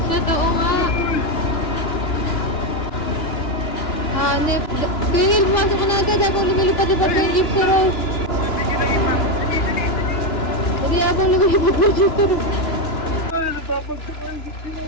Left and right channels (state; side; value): late; right; 2.9 ms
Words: Totoo nga! Hanep! Tingin, pumasok ko na agad ako lumilipad-lipad ko yung jeep sa road! Hindi ako lumilipad ko yung jeep sa road!